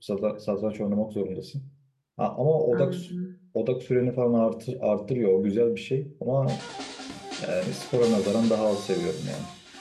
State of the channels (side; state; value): both; identical; correlation 1.00